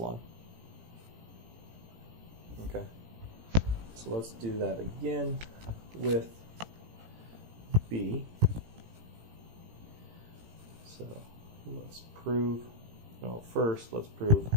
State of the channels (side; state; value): left; late; 18 ms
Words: Okay, so let's do that again with B. So let's prove, no, first let's prove